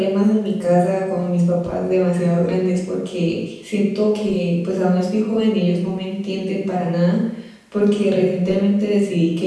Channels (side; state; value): both; identical; correlation 1.00